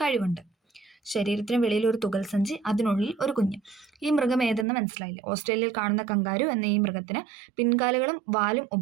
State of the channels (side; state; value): left; drops out; at 4.7 s